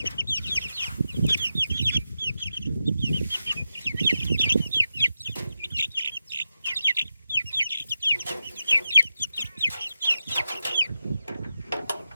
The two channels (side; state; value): both; inverted; correlation -0.89